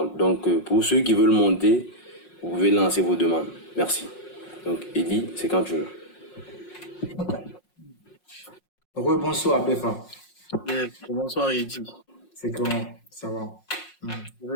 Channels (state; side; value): late; right; 5.5 ms